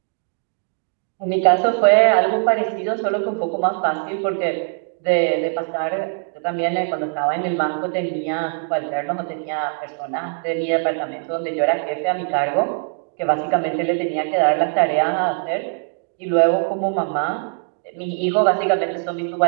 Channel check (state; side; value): silent; left; digital silence